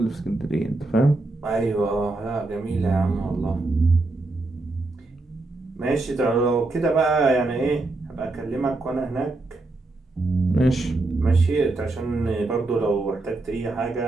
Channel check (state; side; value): quieter; left; 3.1 dB